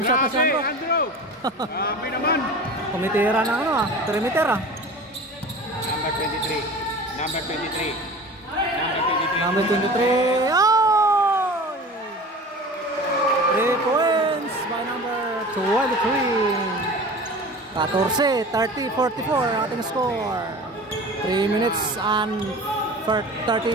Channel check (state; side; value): normal; both; correlation 0.37